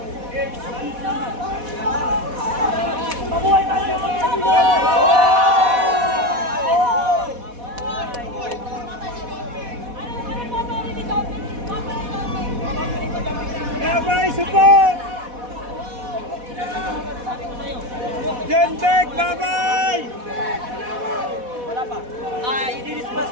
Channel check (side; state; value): left; late; 4.1 ms